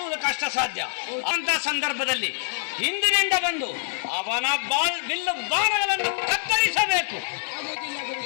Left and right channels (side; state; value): right; silent; digital silence